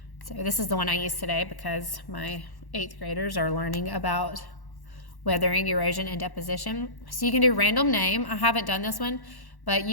So this is the one I used today because my 8th graders are learning about weathering, erosion, and deposition. So you can do random name. I haven't done this one, but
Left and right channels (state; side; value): late; right; 1.1 ms